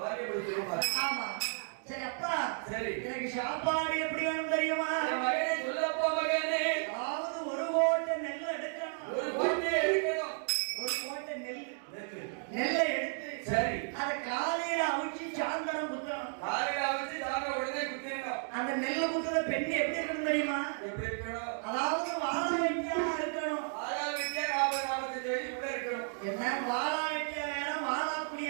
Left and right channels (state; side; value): silent; left; 55 dB below the other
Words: பிடிச்சிருப்பா. ஆமா. சரி அப்பா. சரி. எனக்கு சாப்பாடு எப்படி வேணும் தெரியுமா? மகனே சொல்லப்பா மகனே. அதாவது 1 கோட்டை நெல் எடுக்கணும். 1 கோட்டை எடுக்கணும். 1 கோட்டை நெல்லை எடுத்து சரி. அத காலையில அவிச்சு சாயந்தரம் குத்தணும். காலையில அவிச்சு சாயந்தரம் உடனே குத்திடணும். அந்த நெல்லை குத்துற பெண்ணு எப்படி இருக்கணும் தெரியுமா? எப்படி இருக்கணும்? அதாவது வாழ வெட்டியா இருக்கணும். வாழ வெட்டியா 40-45 வயசு கூட இருக்கணும். என்ன வாழ வெட்டியா வேற, வாழா